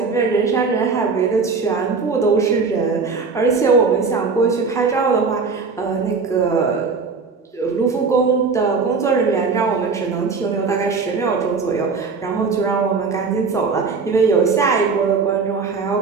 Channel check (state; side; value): quieter; left; 4.8 dB